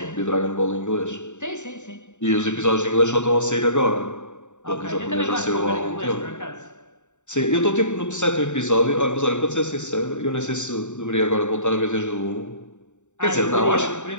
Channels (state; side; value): late; right; 0.84 ms